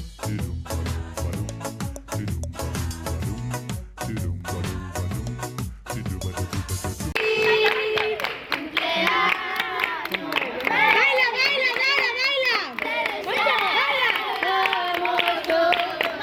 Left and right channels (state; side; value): identical; both; correlation 1.00